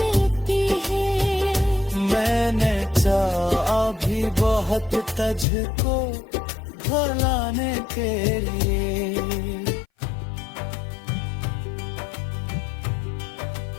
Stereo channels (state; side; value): drops out; right; at 5.5 s